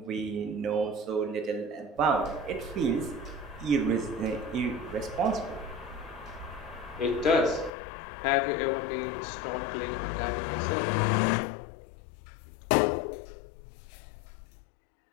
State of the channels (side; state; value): right; drops out; at 7.7 s